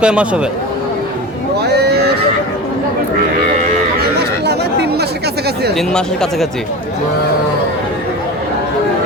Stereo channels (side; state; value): both; normal; correlation 0.29